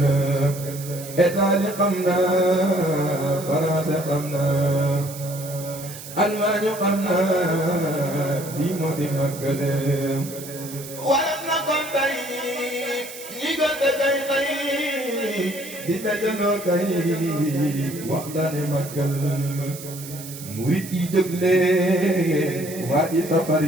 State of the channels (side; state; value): right; noise; hiss, 13 dB below the sound